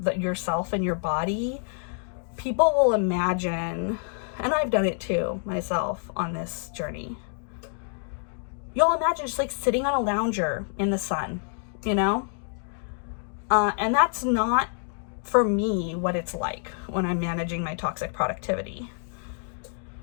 yourself and your body, people will imagine, and I've done it too myself on this journey, you'll imagine just like sitting on a lounger in the sun, and that's not for me what it's like when I'm managing my toxic productivity.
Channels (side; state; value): right; silent; 60 dB below the other